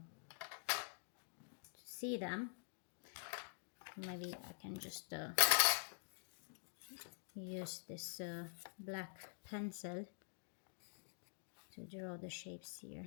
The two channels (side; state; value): right; silent; digital silence